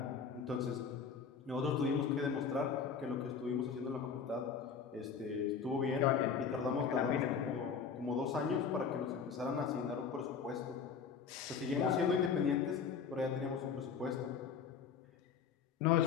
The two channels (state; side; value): quieter; right; 6.3 dB